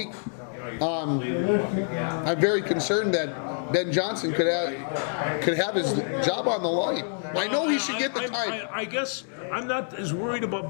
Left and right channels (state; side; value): silent; right; 60 dB below the other